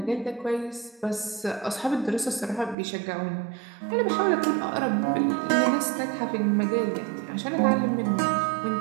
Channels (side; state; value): left; drops out; at 2.8 s